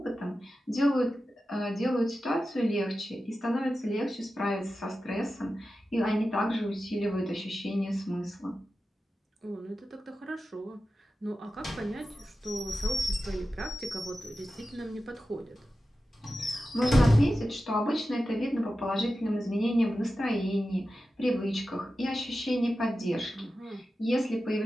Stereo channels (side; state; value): both; normal; correlation 0.93